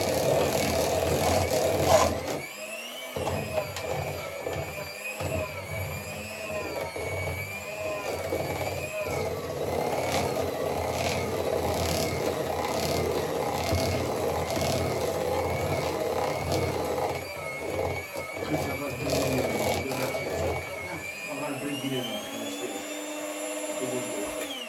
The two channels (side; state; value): both; identical; correlation 1.00